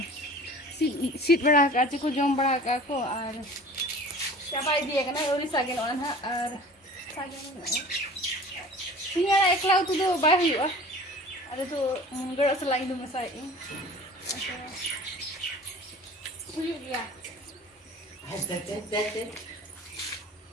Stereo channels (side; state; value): both; normal; correlation 0.43